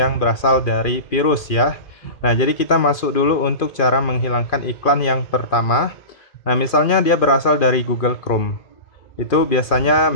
berasal dari virus ya. Nah, jadi kita masuk dulu untuk cara menghilangkan iklan yang pertama. Nah, misalnya dia berasal dari Google Chrome. Itu biasanya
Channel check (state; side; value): late; right; 2.4 ms